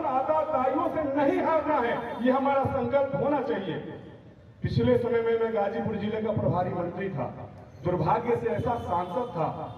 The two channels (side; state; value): both; identical; correlation 1.00